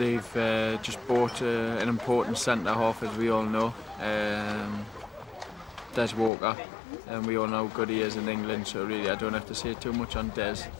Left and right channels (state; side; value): drops out; right; at 6.3 s